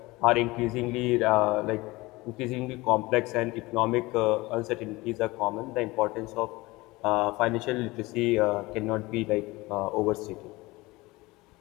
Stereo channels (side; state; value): right; quieter; 21.6 dB